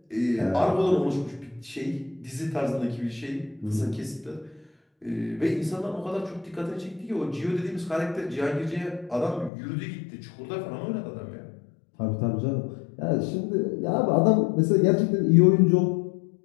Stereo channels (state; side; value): drops out; right; at 9.5 s